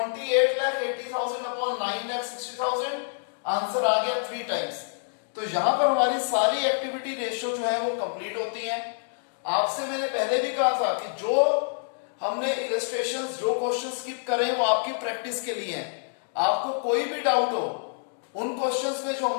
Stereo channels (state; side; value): silent; right; digital silence